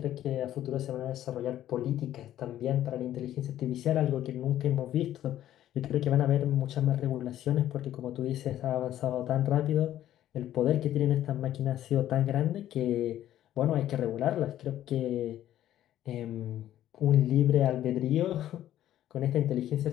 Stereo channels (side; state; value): right; quieter; 12.4 dB